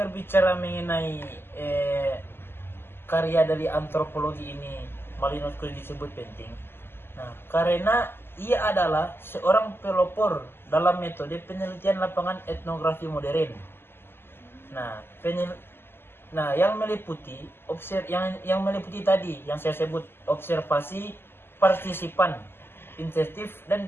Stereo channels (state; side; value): late; right; 0.11 ms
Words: mengenai karya dari antropologi ini, Malinowski disebut penting. Nah, karena ia adalah seorang pelopor dalam metode penelitian lapangan etnografi modern. Nah, yang meliputi tadi yang saya sebut observasi partisipan, insentif dan